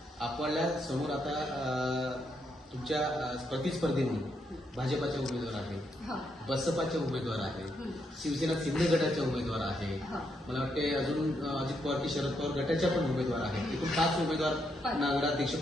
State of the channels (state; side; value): normal; both; correlation 0.78